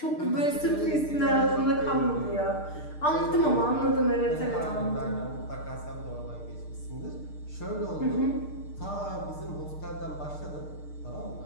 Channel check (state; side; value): late; right; 6.6 ms